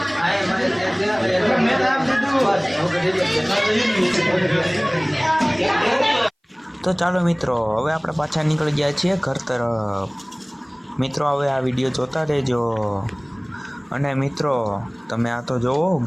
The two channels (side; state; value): both; identical; correlation 1.00